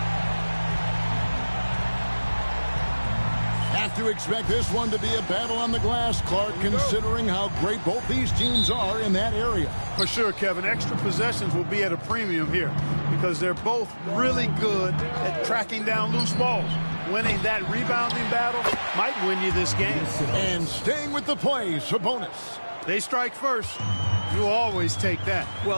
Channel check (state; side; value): inverted; both; correlation -1.00